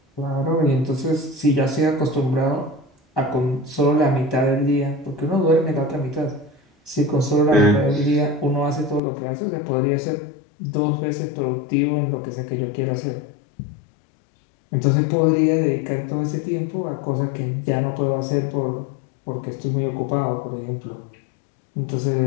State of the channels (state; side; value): drops out; right; at 9.0 s